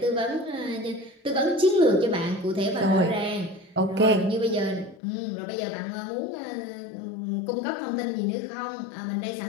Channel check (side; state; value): right; drops out; at 5.0 s